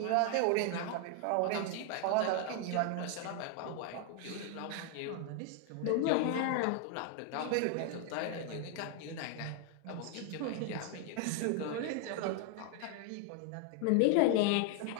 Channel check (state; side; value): different; both; correlation 0.00